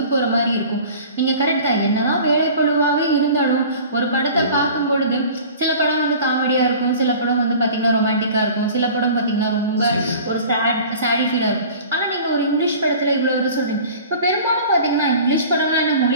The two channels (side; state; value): both; inverted; correlation -0.43